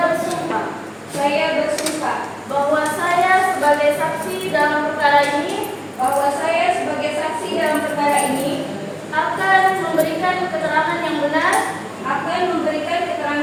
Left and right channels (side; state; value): both; identical; correlation 1.00